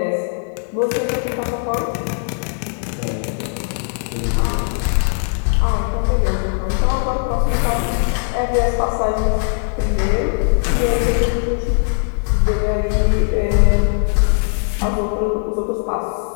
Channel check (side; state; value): right; silent; digital silence